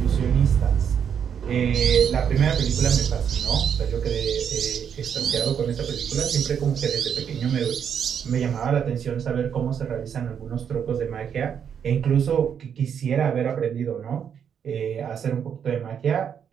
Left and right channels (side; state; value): left; quieter; 7.9 dB